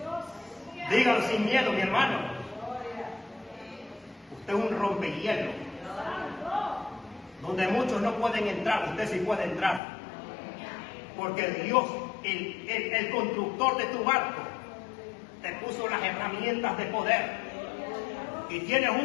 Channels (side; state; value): right; drops out; at 9.8 s